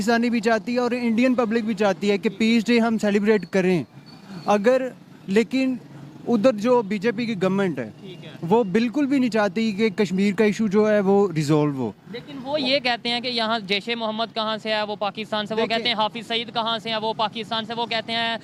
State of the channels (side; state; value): both; identical; correlation 1.00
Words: भी चाहती है और इंडियन पब्लिक भी चाहती है कि पीस डे हम सेलिब्रेट करें। अगर लेकिन उधर जो बीजेपी की गवर्नमेंट है वो बिल्कुल भी नहीं चाहती कि कश्मीर का इशू जो है वो रिजॉल्व हो। लेकिन वो ये कहते हैं कि यहाँ जैश ए मोहम्मद कहाँ से है, वो पाकिस्तान से, वो कहते हैं हाफिज सईद कहाँ से है, वो पाकिस्तान से, वो कहते हैं